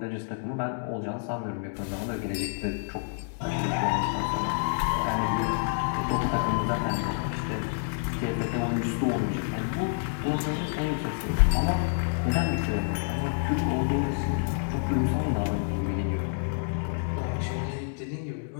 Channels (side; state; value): right; silent; 59 dB below the other